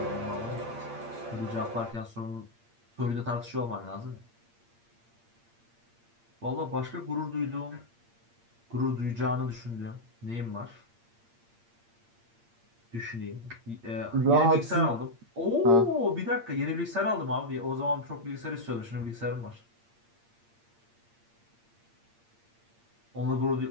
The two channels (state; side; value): late; left; 8.6 ms